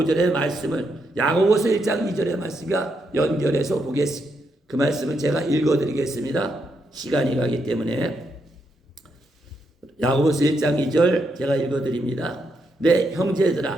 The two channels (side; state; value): both; normal; correlation 0.80